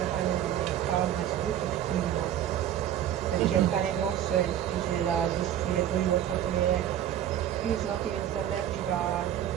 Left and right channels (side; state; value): left; quieter; 11.0 dB